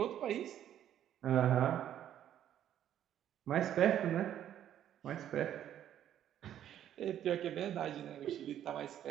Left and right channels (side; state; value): left; quieter; 10.8 dB